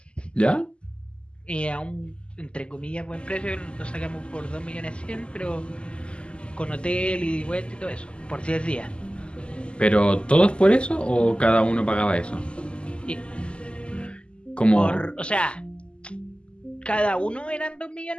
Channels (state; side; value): late; right; 0.052 ms